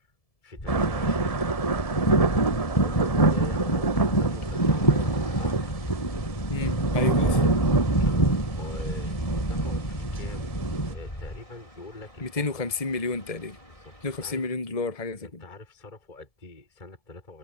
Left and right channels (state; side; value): late; right; 1.7 ms